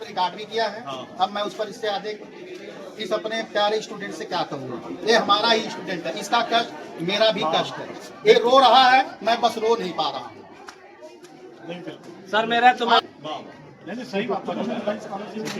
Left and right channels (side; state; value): both; identical; correlation 1.00